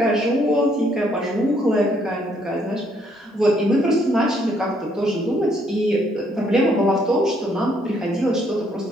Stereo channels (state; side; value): normal; both; correlation 0.69